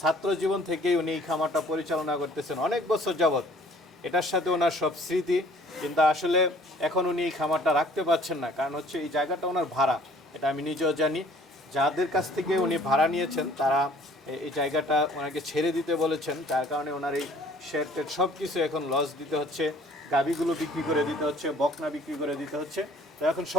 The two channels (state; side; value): normal; both; correlation 0.55